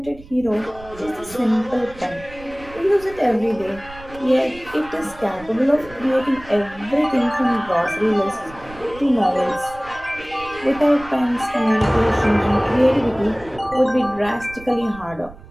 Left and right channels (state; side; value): noise; right; rumble, 19 dB below the sound